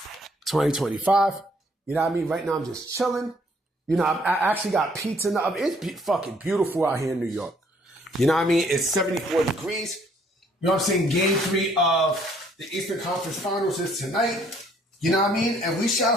You know what I mean? Right now, I'm just chilling. You know, I actually got pizza in the oven. It's fucking beautiful out here in New York. You know what I mean? It's 74 degrees. You know what I'm saying? Game 3 of the Eastern Conference Finals is tonight. You know what I mean? And we shall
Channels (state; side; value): normal; both; correlation 0.64